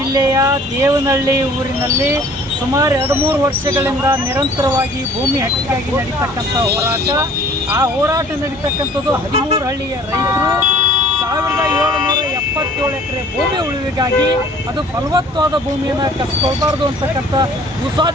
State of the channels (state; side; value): normal; both; correlation 0.52